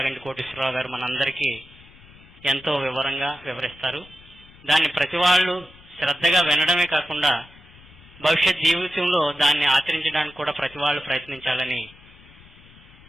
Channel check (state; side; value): noise; left; rumble, 23 dB below the sound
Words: కోటేశ్వరరావు గారు మనందరికీ ఎంతో వివరంగా వివరిస్తారు. దాన్ని ప్రతి వాళ్ళు శ్రద్ధగా వినడమే కాకుండా భవిష్యత్ జీవితంలో దాన్ని ఆచరించడానికి కూడా ప్రతి వాళ్ళు ప్రయత్నించాలని